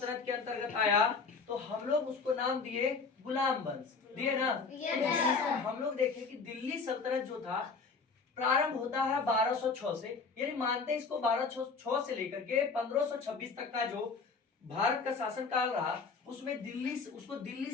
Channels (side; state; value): right; quieter; 4.8 dB